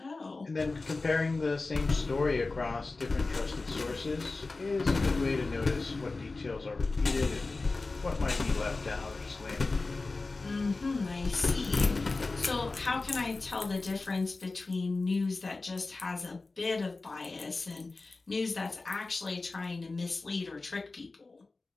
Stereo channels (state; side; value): quieter; right; 3.6 dB